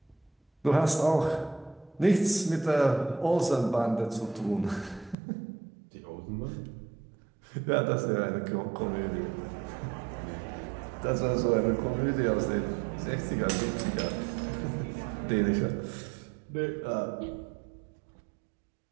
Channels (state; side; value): drops out; left; at 5.2 s